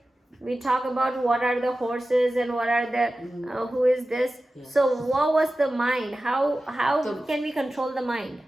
We talk about what are the horses and what are the, who is this? Yes. So what was the mind? How can we control the mind?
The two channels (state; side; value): normal; both; correlation 0.95